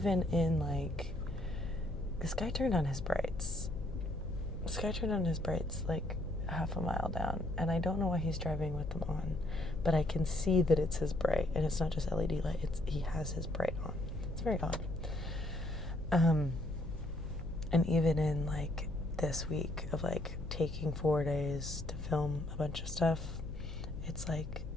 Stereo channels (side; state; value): left; noise; hum, 9 dB below the sound